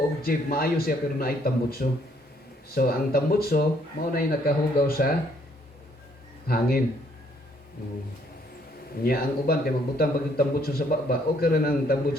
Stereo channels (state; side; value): normal; both; correlation 0.67